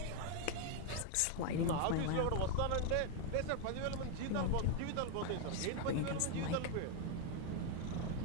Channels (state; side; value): different; both; correlation 0.01